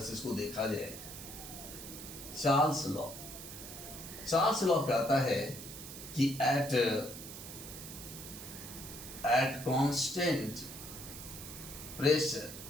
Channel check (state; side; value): noise; right; hiss, 11 dB below the sound